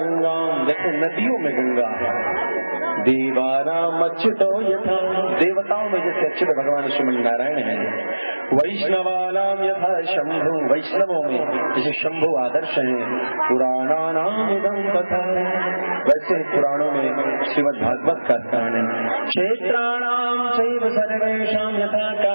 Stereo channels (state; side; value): inverted; both; correlation -1.00